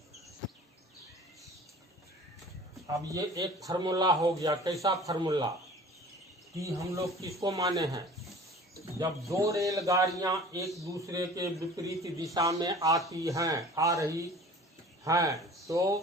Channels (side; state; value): both; normal; correlation 0.44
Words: अब ये एक फार्मूला हो गया। कैसा फार्मूला? T हम लोग किसको माने हैं? जब दो रेलगाड़ियां एक दूसरे के विपरीत दिशा में आ रही हैं तो